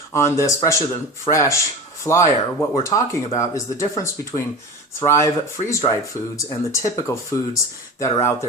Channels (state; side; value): normal; both; correlation 0.31